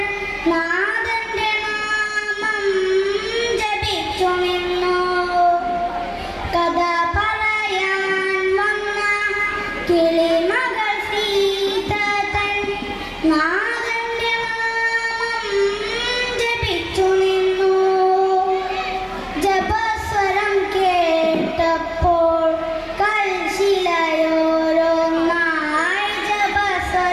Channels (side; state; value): both; identical; correlation 1.00